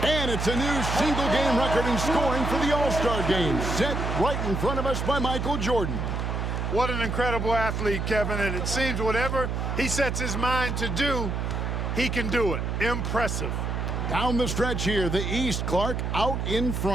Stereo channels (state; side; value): noise; right; hum, 1 dB below the sound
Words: And it's a new single-game record in scoring for the All-Star Game. Set right in front of us by Michael Jordan. What an incredible athlete, Kevin. And it seems whatever he sets his mind to do, he can do it. Impressive. Down the stretch here, the East, Clark, out in